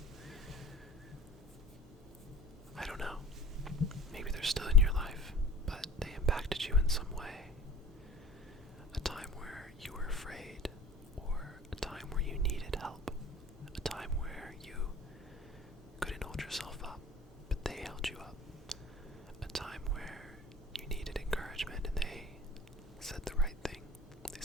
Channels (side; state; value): both; normal; correlation 0.46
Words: I don't know. Maybe they're still in your life, but they impacted you in some way. A time where you were afraid, or a time where you needed help. A time where you couldn't hold yourself up, but they held you up. A time where you needed encouragement and they said the right thing. They